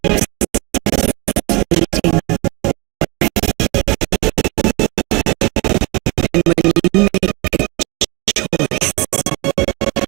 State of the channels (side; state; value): left; quieter; 26.1 dB